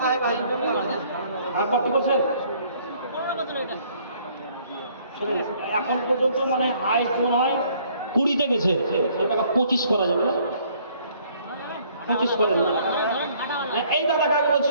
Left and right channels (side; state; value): both; inverted; correlation -0.61